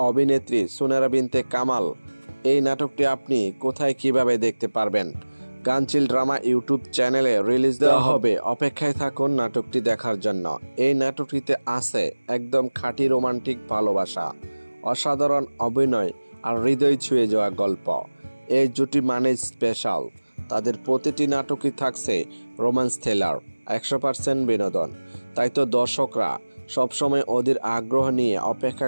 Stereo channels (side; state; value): both; inverted; correlation -1.00